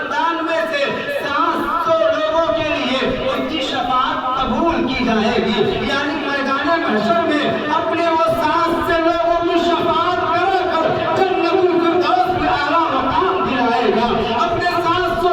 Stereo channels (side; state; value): both; identical; correlation 1.00